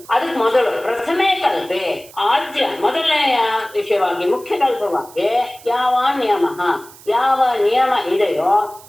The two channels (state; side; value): noise; right; hiss, 21 dB below the sound